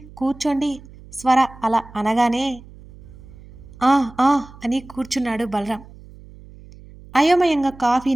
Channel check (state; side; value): noise; right; hum, 20 dB below the sound